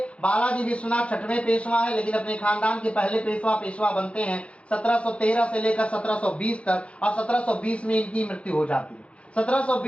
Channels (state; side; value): late; right; 0.061 ms